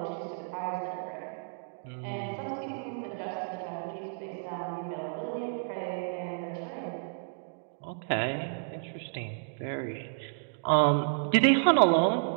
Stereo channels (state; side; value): silent; left; digital silence